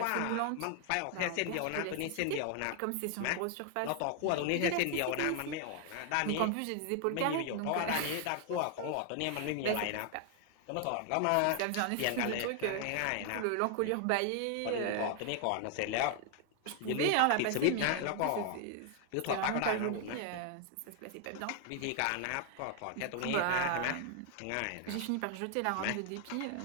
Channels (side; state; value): both; different; correlation 0.00